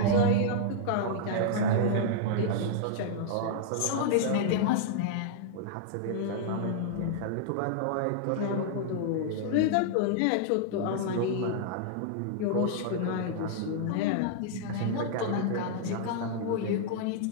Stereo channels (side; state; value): both; different; correlation -0.01